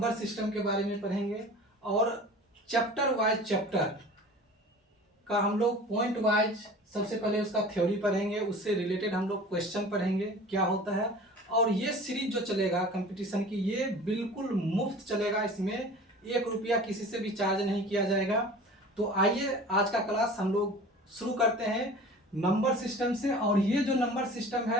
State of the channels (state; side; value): normal; both; correlation 0.41